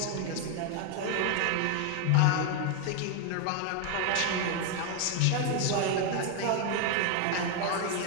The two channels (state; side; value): different; both; correlation 0.01